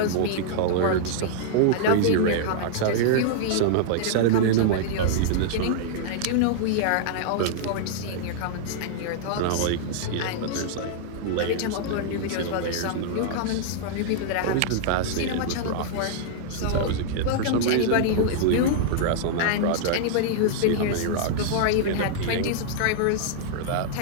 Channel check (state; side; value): different; both; correlation -0.01